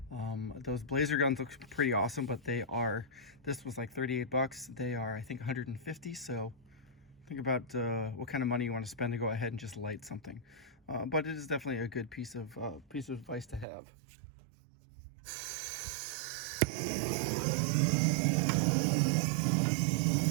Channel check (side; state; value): left; drops out; at 13.7 s